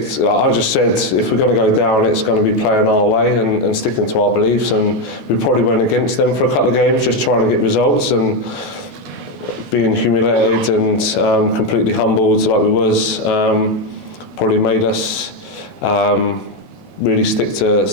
to, I just said, if we're going to go down, it's going to be playing our way and sticking to our beliefs, and we probably went against them for a couple of games just trying to get results, and being humiliated and completely humbled like we was probably made us really stick to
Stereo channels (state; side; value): late; left; 5.7 ms